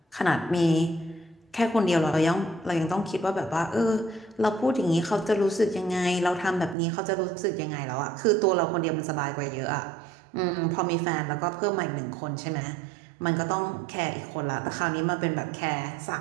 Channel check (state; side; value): drops out; left; at 6.8 s